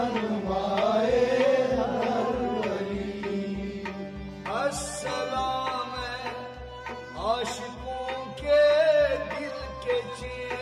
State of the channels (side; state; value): both; identical; correlation 1.00